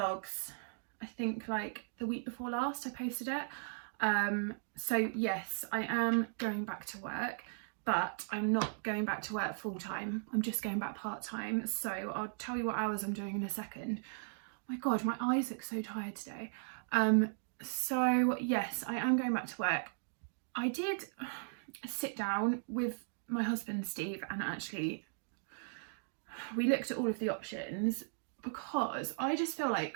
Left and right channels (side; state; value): left; silent; digital silence